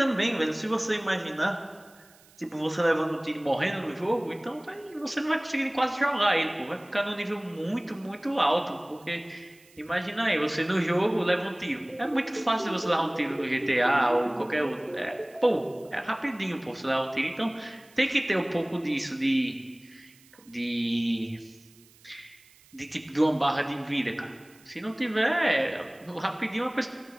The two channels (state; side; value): noise; right; hiss, 27 dB below the sound